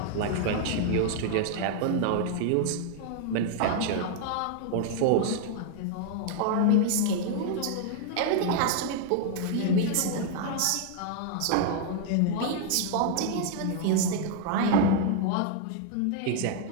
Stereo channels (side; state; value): both; different; correlation 0.00